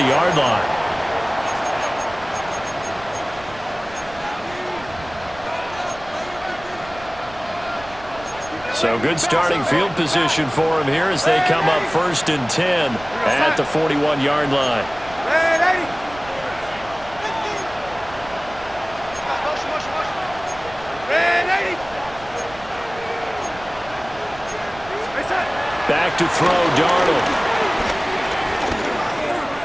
line. So good starting field position for him here as they come up 1st and 10 at the 41-yard line. Back to throw, Darnold.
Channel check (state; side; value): noise; right; rumble, 19 dB below the sound